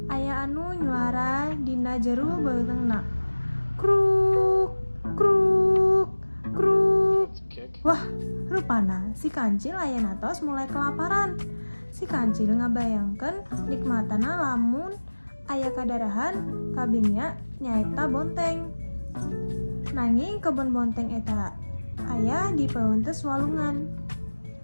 aya anu nyuara dina jeru beulengna. Kruk kruk kruk. Wah, rupana si kancil aya natos mulai kelaparan. Si kancil ngabayangkeun nikmatana lamun aya kadarahan kabingnya nyaeta bonteng. Nanging kebun bonteng eta aya di paeunteus walungan.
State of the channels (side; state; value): both; inverted; correlation -1.00